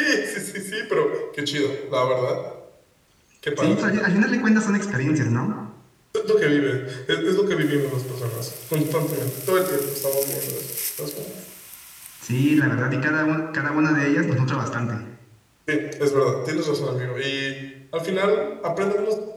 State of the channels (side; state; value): both; identical; correlation 1.00